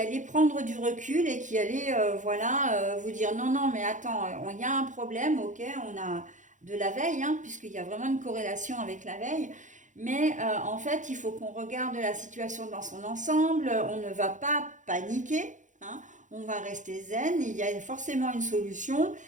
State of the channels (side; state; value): left; late; 0.36 ms